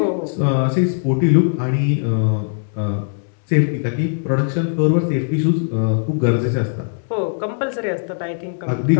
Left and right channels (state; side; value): silent; right; digital silence